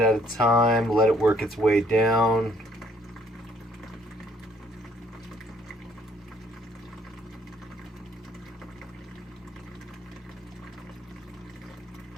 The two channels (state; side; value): normal; both; correlation 0.64